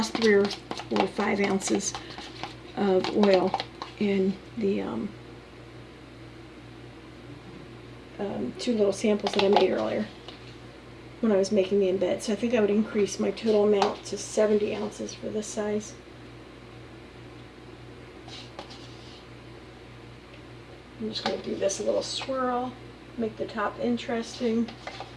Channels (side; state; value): both; identical; correlation 1.00